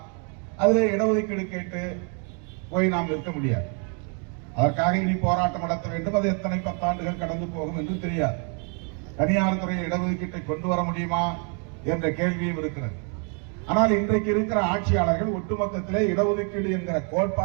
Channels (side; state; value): left; quieter; 39.0 dB